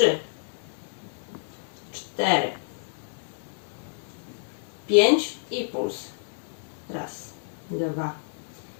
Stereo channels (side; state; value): right; silent; 59 dB below the other